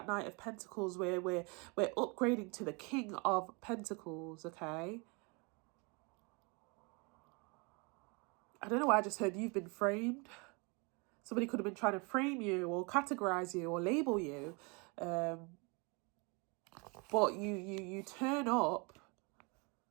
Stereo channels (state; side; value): quieter; left; 30.6 dB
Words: Knight of Pentacles, where we're upgrading to the King of Pentacles, okay? I don't know why I just heard you've been framed. Somebody could have been trying to frame you, or categorize you, or label you. But you turn up